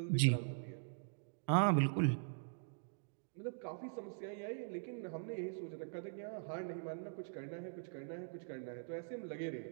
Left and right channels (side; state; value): left; silent; digital silence